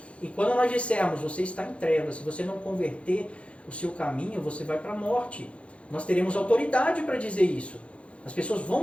E quando nós dissermos, você está em trevas, se você não converter o seu caminho, você vai para a morte. Nós teremos autoridade para dizer isso. As pessoas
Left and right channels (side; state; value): right; late; 0.061 ms